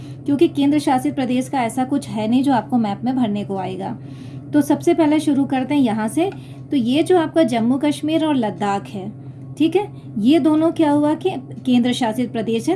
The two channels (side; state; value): both; identical; correlation 1.00